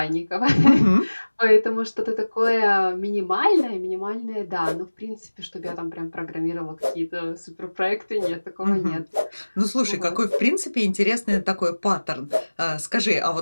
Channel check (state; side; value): inverted; both; correlation -1.00